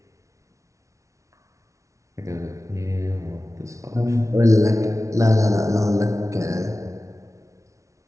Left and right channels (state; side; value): late; left; 0.15 ms